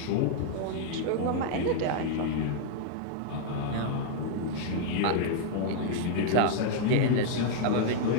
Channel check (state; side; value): different; both; correlation -0.01